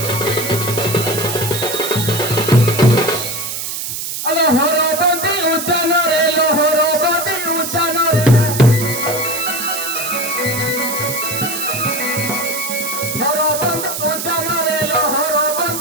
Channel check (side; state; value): right; noise; hiss, 5 dB below the sound